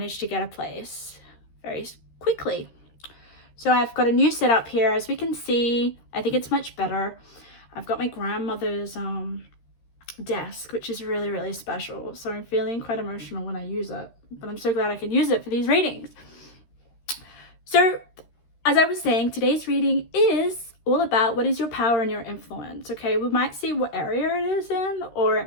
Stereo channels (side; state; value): right; late; 13 ms